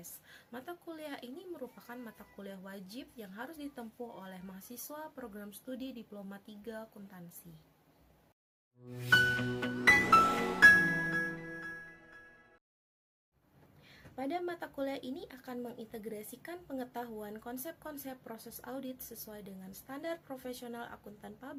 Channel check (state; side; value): identical; both; correlation 1.00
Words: Mata kuliah ini merupakan mata kuliah wajib yang harus ditempuh oleh mahasiswa program studi Diploma 3 Akuntansi. Pada mata kuliah ini akan mengintegrasikan pengetahuan konsep-konsep proses audit sesuai dengan standar profesional akuntan